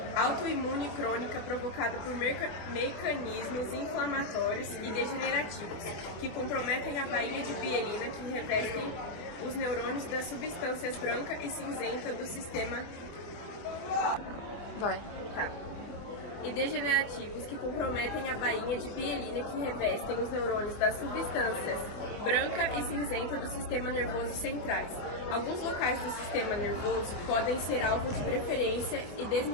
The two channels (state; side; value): late; right; 24 ms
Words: autoimune crônica provocada por mecanismos inflamatórios e degenerativos, que comprometem a baía de mielina que revestem os neurônios das substâncias branca e cinzenta do sistema e degenerativos que comprometem a bainha de mielina que revestem os neurônios das substâncias branca e cinzenta do sistema nervoso centrais. Alguns locais do sistema nervoso podem ser alvo de preferência e